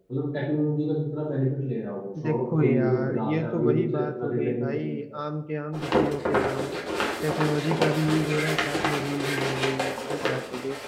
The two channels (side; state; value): both; identical; correlation 1.00